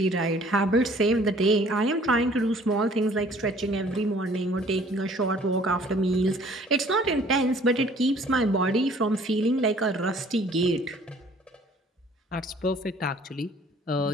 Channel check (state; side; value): normal; both; correlation 0.55